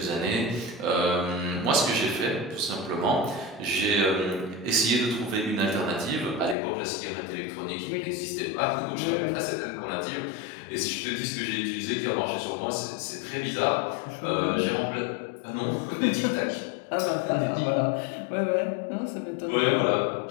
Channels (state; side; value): drops out; right; at 6.6 s